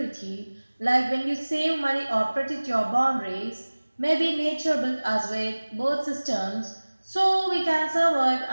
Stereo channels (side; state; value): both; inverted; correlation -1.00